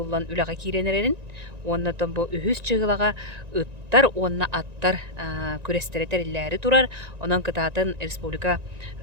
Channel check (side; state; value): left; late; 1.9 ms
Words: үлага киренерерин, оннотон бу үхүс чыгылага ыттар, онна аттар күрестеретерилләри турар, онон кытатын республика